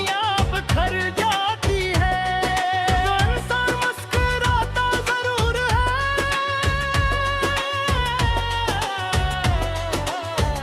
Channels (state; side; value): identical; both; correlation 1.00